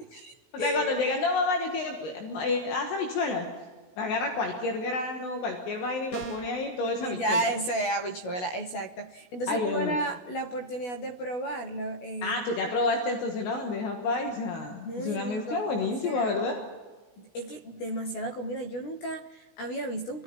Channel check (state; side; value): late; right; 16 ms